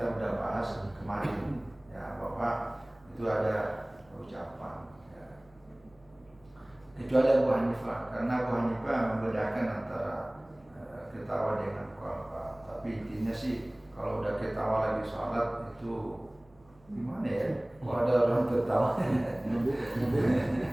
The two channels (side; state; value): right; noise; hum, 29 dB below the sound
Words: udah bahas kemarin ya, bahwa itu ada ucapan. Kecuali Abu Hanifah, karena Abu Hanifah membedakan antara ketawa dengan qalqa. Tapi intinya sih kalau udah ketawa lagi sholat itu gimana ya? Kalau ada orang tertawa,